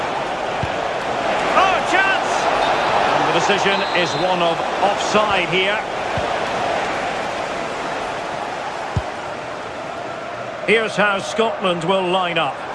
Oh, chance! And the decision is one of offside here. Here's how Scotland will line up.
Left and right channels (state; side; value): identical; both; correlation 1.00